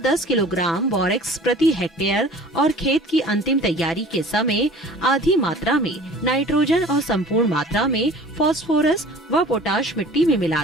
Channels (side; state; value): both; normal; correlation 0.45